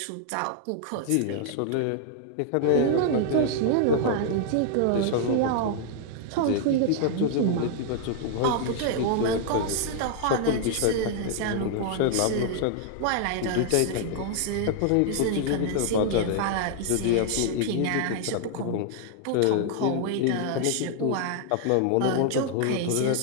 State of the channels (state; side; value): different; both; correlation 0.00